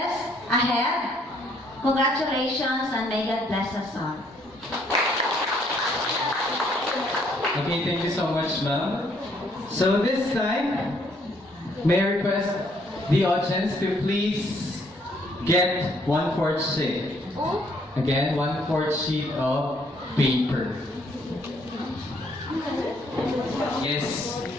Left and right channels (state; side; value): normal; both; correlation 0.67